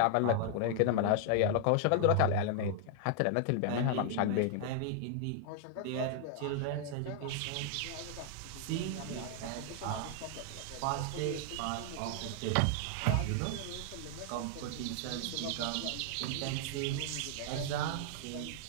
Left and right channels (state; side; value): different; both; correlation 0.00